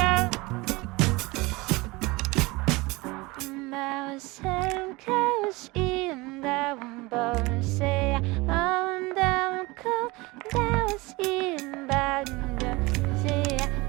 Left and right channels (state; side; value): quieter; left; 23.1 dB